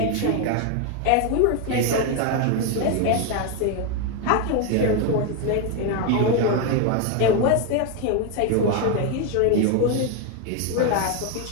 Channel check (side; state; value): both; different; correlation 0.01